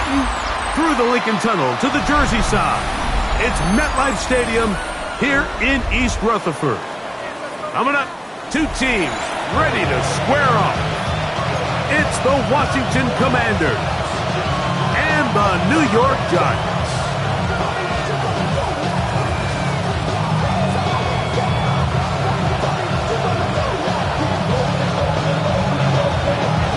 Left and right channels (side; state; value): both; identical; correlation 1.00